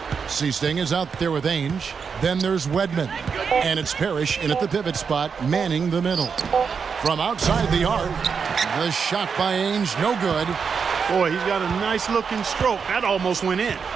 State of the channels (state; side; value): quieter; left; 6.0 dB